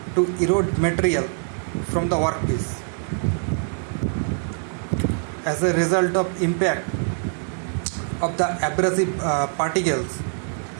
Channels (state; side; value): silent; left; 61 dB below the other